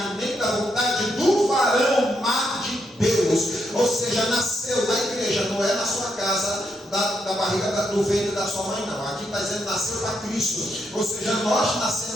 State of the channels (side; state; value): both; normal; correlation 0.79